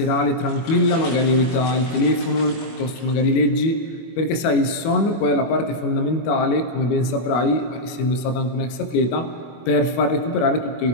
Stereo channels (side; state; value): right; late; 25 ms